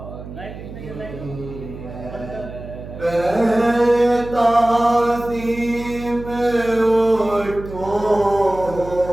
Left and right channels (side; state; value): right; noise; hum, 12 dB below the sound